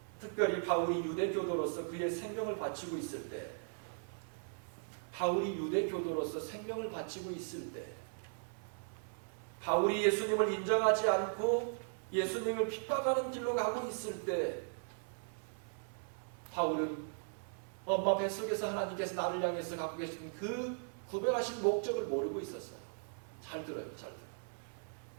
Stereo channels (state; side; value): silent; left; 52 dB below the other